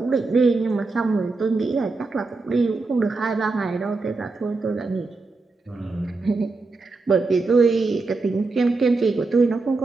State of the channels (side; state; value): left; quieter; 3.7 dB